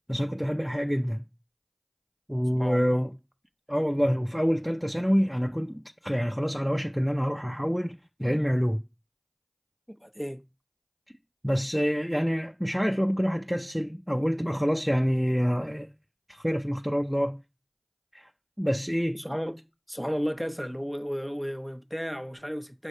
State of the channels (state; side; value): identical; both; correlation 1.00